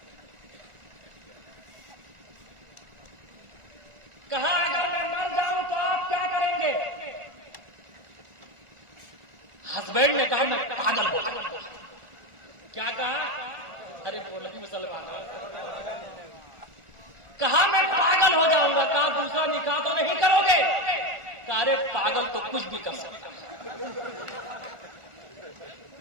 کہا اگر میں مر جاؤں تو آپ کیا کریں گے؟ ہسبینڈ نے کہا میں پاگل ہو جاؤں. کیا کہا؟ ارے بولو مسلمان. کہا میں پاگل ہو جاؤں گا. کہا دوسرا نکاح تو نہیں کرو گے؟ کہا ارے پاگل تو کچھ بھی کر سکتا.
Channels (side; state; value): left; late; 1.4 ms